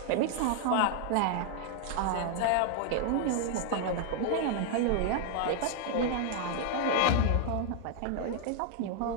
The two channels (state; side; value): different; both; correlation 0.00